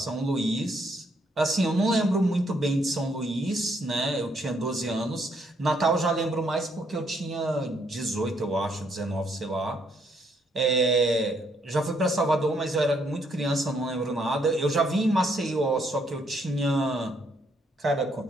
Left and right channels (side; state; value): both; normal; correlation 0.72